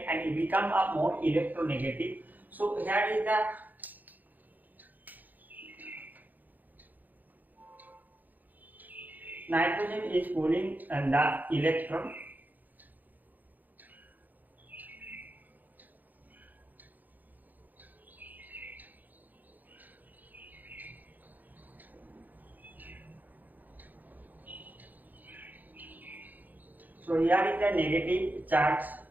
it become a more electronegative. So here is the nitrogen is pulling the electron, so here is the negative charge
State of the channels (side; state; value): left; late; 0.083 ms